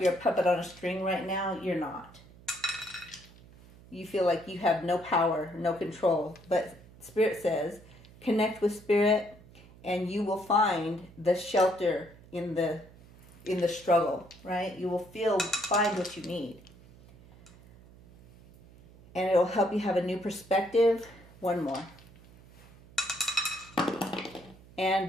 a puppet on a string right now, you're not. You feel like you have no power, no control. But Spirit says, connect with Spirit, and you will find the shelter in the struggle, right? You will find what you need. And it will help you have a new perspective. One more. And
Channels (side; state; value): right; noise; hum, 23 dB below the sound